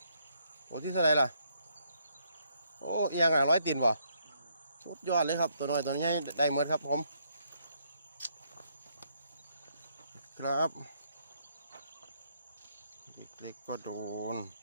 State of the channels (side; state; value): both; inverted; correlation -0.72